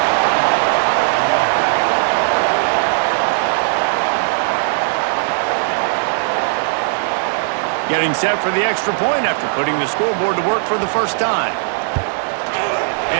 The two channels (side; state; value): left; silent; 68 dB below the other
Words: Getting set for the extra point after putting the scoreboard to work for the first time.